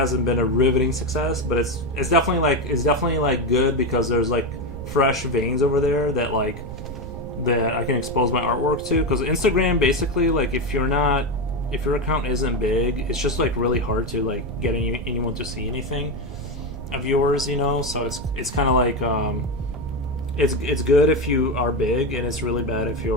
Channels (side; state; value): right; noise; rumble, 10 dB below the sound